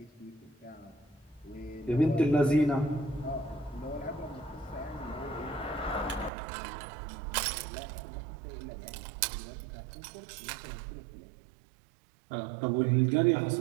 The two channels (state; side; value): drops out; left; at 6.3 s